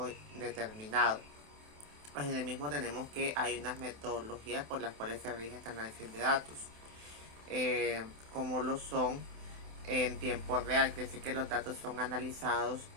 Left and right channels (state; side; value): late; left; 27 ms